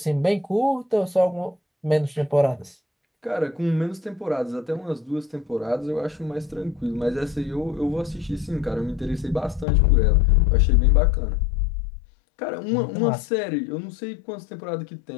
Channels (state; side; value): drops out; right; at 9.7 s